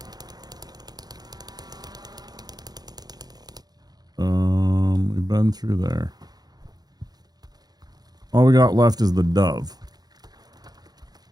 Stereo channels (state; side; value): late; left; 0.19 ms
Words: We've been through there. All we got left is the dove.